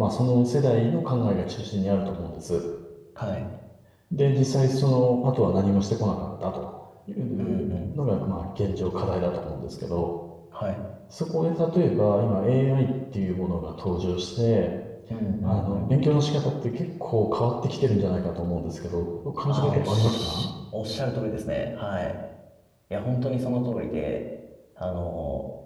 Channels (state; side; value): identical; both; correlation 1.00